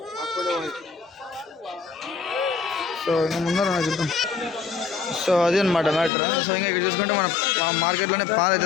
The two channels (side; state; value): right; drops out; at 6.1 s